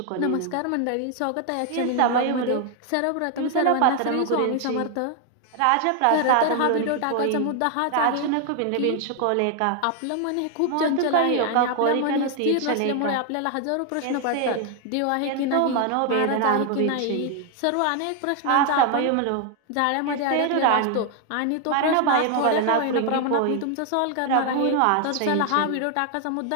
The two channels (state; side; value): different; both; correlation 0.00